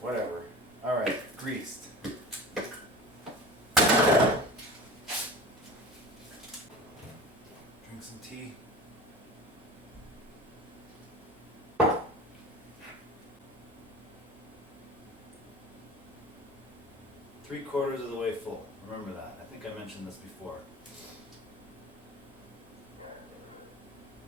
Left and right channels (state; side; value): normal; both; correlation 0.35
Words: Alright, greased. Drink some tea. Three-quarters of the way full. Remember that. I think I mentioned this before.